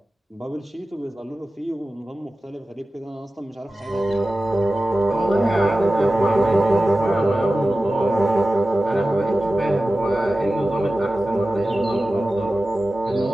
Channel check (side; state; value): both; normal; correlation 0.95